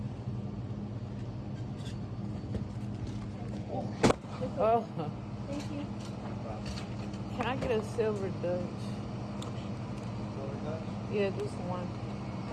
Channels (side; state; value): both; identical; correlation 1.00